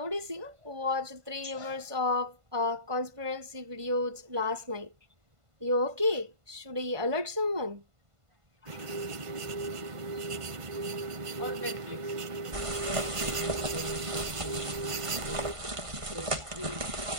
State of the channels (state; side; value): late; left; 1.5 ms